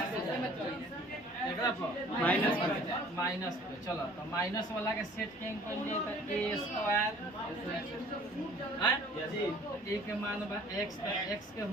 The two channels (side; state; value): both; normal; correlation 0.52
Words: माइनस पे चलो तो माइनस वाला के सेट के तो a स्क्वायर a के मान बा x के